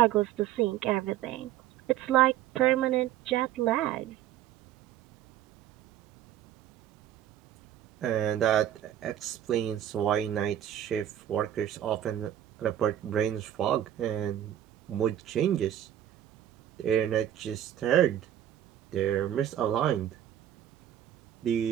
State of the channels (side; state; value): left; quieter; 11.5 dB